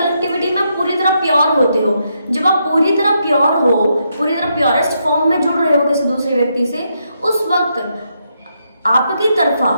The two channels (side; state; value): both; inverted; correlation -0.80